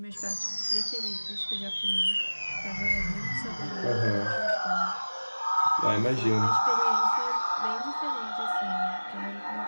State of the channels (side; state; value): both; inverted; correlation -1.00